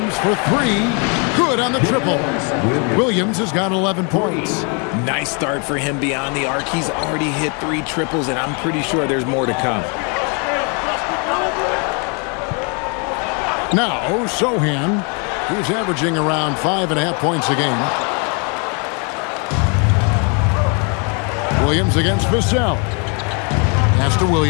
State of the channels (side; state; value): right; quieter; 35.8 dB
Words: for 3. Good on the triple. Williams has got 11 points. Nice start for him beyond the arc. He's already hit 3 triples, and I'm pretty sure there's more to come. Now, Sohan, who's averaging around 5.5 points a game. Williams against Vassell. Pass to